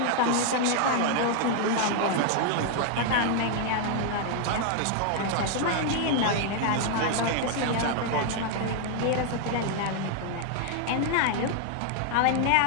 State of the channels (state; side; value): different; both; correlation 0.00